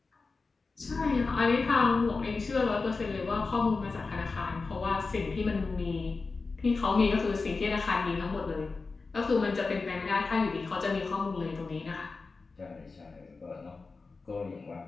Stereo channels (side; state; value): right; quieter; 4.1 dB